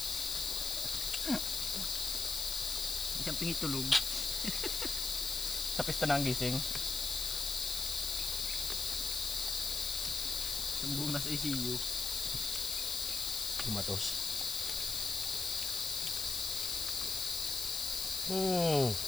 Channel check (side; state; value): left; noise; hiss, 1 dB below the sound